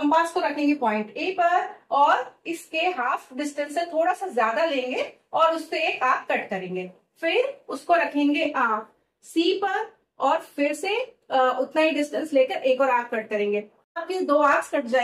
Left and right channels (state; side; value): identical; both; correlation 1.00